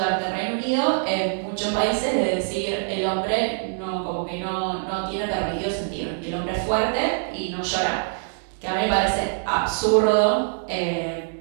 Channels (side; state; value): left; silent; digital silence